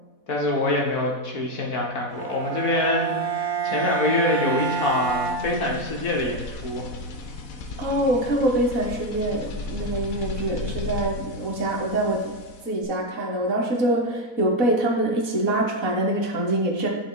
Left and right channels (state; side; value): late; right; 4.1 ms